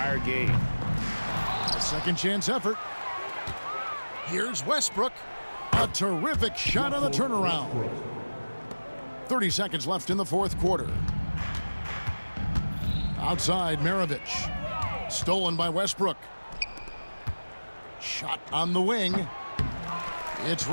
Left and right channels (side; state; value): both; inverted; correlation -1.00